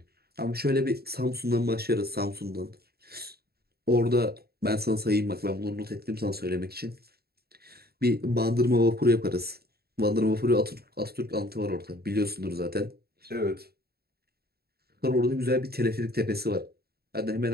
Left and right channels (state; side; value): late; left; 0.46 ms